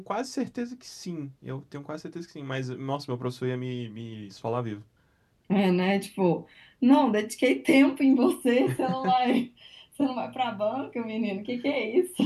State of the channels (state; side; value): identical; both; correlation 1.00